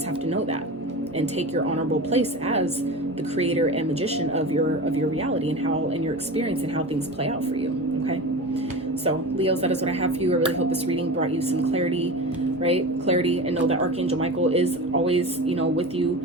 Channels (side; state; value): both; normal; correlation 0.29